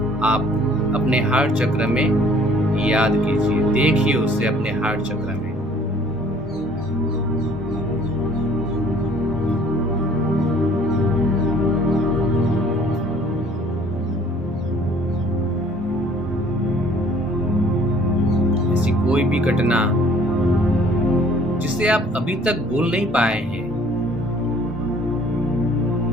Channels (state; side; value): normal; both; correlation 0.56